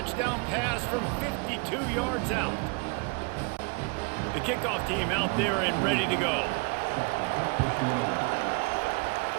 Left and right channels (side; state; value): left; quieter; 32.4 dB